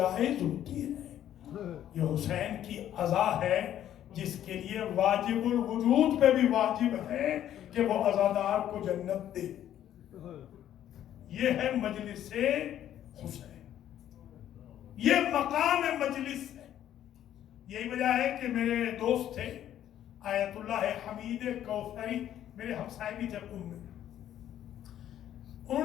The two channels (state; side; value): quieter; right; 11.3 dB